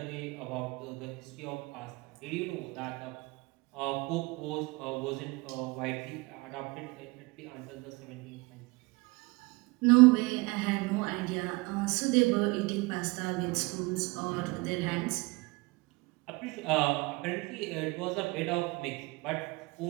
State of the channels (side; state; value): left; quieter; 24.7 dB